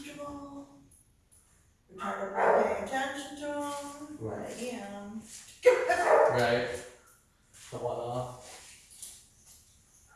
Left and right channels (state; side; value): identical; both; correlation 1.00